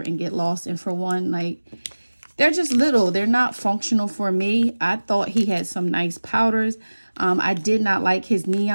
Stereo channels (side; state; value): both; inverted; correlation -1.00